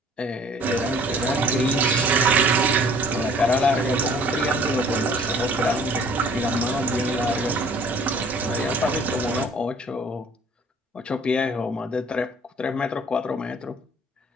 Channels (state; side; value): normal; both; correlation 0.53